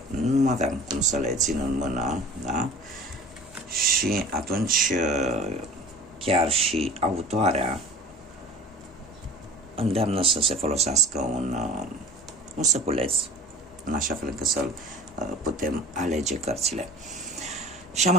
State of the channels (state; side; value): normal; both; correlation 0.42